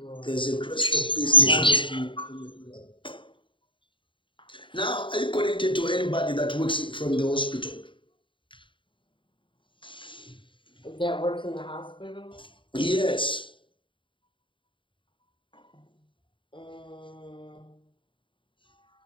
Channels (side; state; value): right; late; 0.24 ms